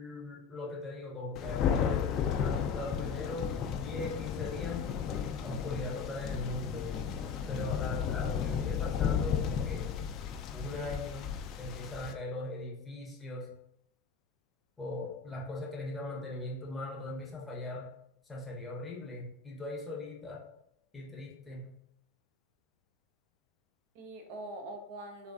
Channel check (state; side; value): quieter; right; 5.4 dB